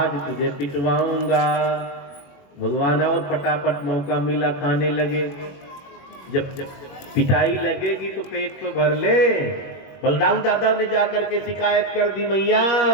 तुझे पिटवाऊंगा। भगवान और फटाफट मौका मिला, खाने लगे। जब पिटाई लगेगी तो पेट तो भर ले। बलदाऊ दादा ने जाकर के शिकायत कर दी, मैया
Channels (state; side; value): late; right; 21 ms